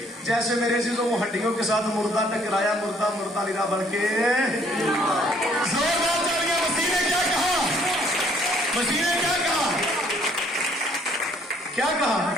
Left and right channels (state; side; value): normal; both; correlation 0.63